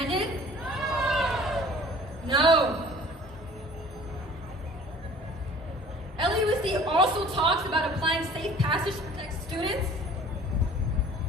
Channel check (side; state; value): both; normal; correlation 0.49